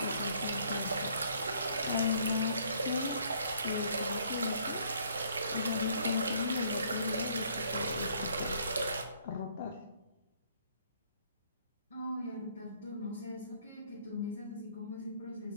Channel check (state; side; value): inverted; both; correlation -0.63